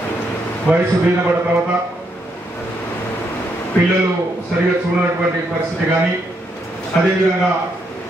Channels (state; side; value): normal; both; correlation 0.77